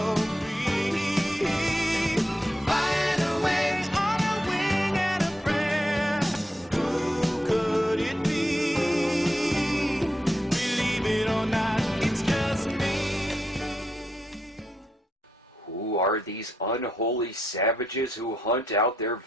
free. Flying away on a wing and a prayer. Who could it be? Believe it or not, it's just me. Who are these unholy savages who hunt out their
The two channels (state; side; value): normal; both; correlation 0.82